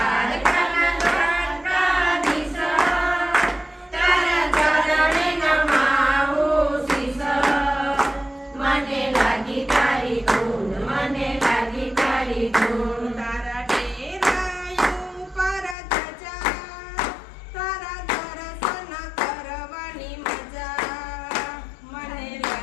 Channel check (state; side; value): drops out; right; at 15.8 s